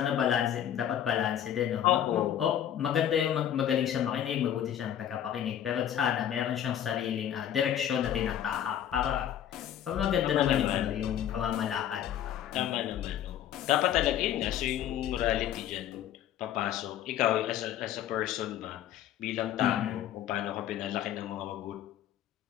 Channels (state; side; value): quieter; right; 10.5 dB